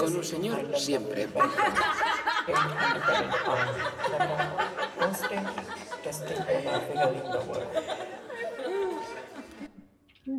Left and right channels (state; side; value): identical; both; correlation 1.00